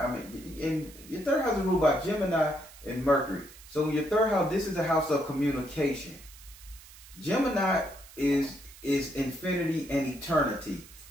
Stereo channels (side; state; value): right; noise; hiss, 20 dB below the sound